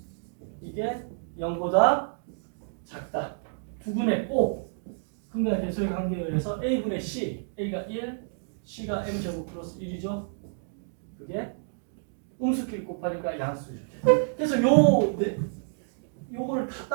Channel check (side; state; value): left; silent; digital silence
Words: 이게 0보다 작다. 두근의 O 근과 대소의 관계에 의해서 a분의 c a가 1 c가 m제곱 플러스 1이죠. 그게 음수끼리 곱하니까 양수죠. 그래서 요거를 다